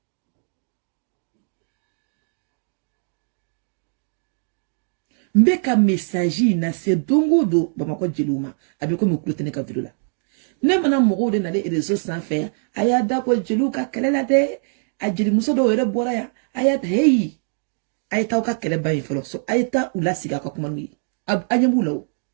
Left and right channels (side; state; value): left; silent; 64 dB below the other